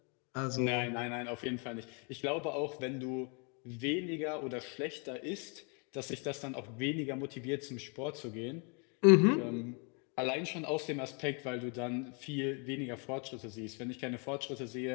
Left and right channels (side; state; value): right; quieter; 35.3 dB